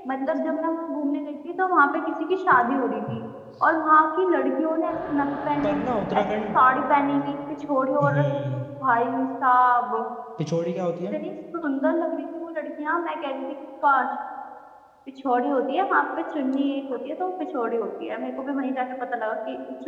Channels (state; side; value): identical; both; correlation 1.00